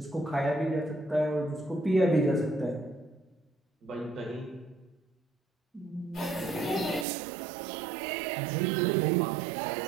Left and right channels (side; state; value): left; drops out; at 7.1 s